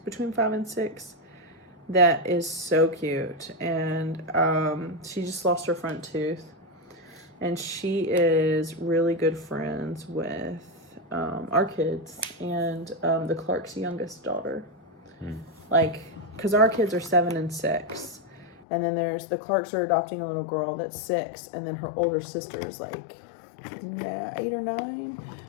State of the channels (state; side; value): drops out; right; at 18.6 s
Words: between 5 and 6. That is so cute, and she just lost her front tooth, and she is really good friends with our kids and the Clark's youngest daughter. Because our kids are 7 and 6, and then there's the Clarks are adopting a little girl that's 6, and then her older sister is like 8 or 9.